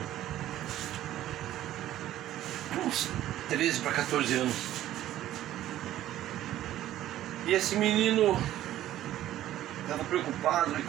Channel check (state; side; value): quieter; left; 13.3 dB